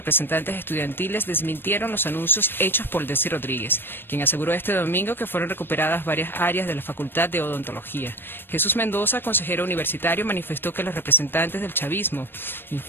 estudiantiles, desmintieron los anuncios hechos por Desi Rodríguez, quien aseguró este domingo que fueron recuperadas varias áreas de la Facultad de Odontología. Jesús Mendoza, consejero universitario, manifestó que los representantes del chavismo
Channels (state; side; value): late; right; 0.099 ms